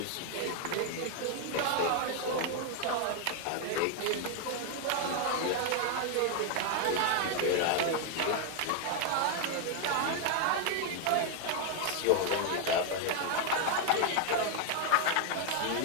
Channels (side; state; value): both; different; correlation 0.00